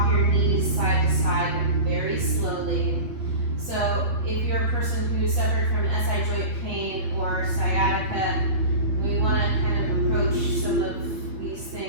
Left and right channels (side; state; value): left; late; 8.6 ms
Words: your knees side to side very slowly. So if you're a person who suffered from SI joint pain or sciatica, we want to kind of approach some of these